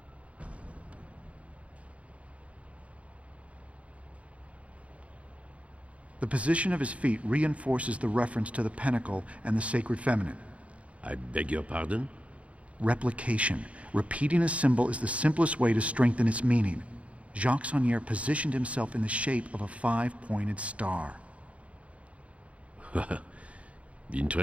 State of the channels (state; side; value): late; left; 0.064 ms